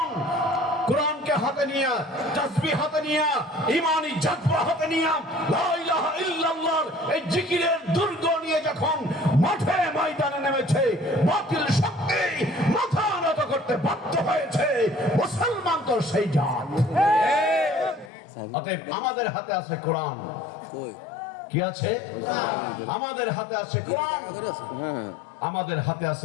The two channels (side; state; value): right; drops out; at 18.1 s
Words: কোরআনকে হাতে নিয়ে, তাসবিহ হাতে নিয়ে, ঈমানি জজ্বা হাতে নিয়ে, লা ইলাহা ইল্লাল্লাহর এই জিকিরের দুর্গ নিয়ে যখন মাঠে ময়দানে নেমেছে, বাতিল শক্তি মাথা নত করতে বাধ্য হয়েছে। মুসলমান তো সেই জাত। অতএব আমাদের হাতে আছে কোরআন। কি আছে? আমাদের হাতে আছে কোরআন, আমাদের হাতে আছে